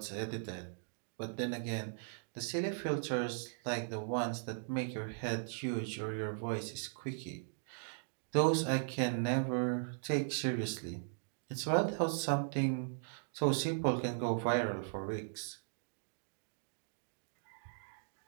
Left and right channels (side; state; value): left; silent; digital silence